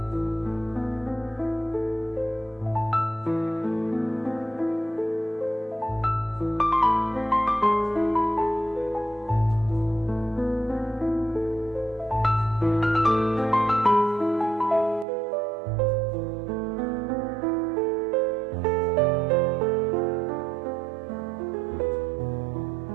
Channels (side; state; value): left; drops out; at 15.1 s